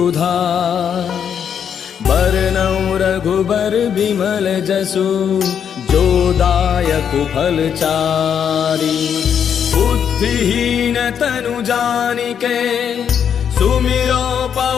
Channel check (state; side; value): quieter; right; 8.0 dB